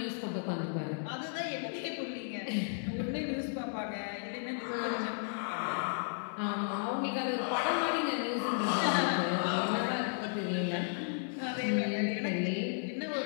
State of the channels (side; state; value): right; silent; digital silence